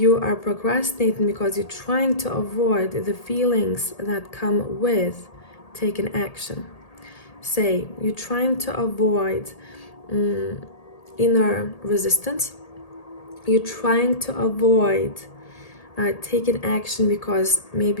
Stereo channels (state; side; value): late; right; 1.8 ms